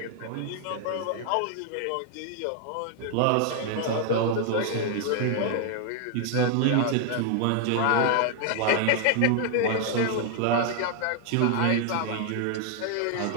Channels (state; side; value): different; both; correlation 0.00